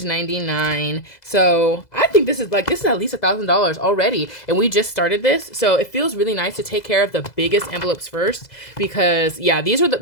99. So I think this is at least $1,000 already. And we just started this. So it feels really nice to take care of the biggest envelopes first because yeah,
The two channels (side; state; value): right; late; 2.0 ms